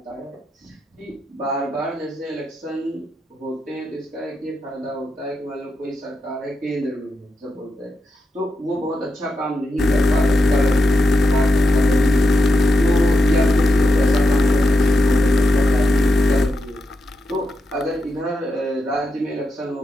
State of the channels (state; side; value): normal; both; correlation 0.87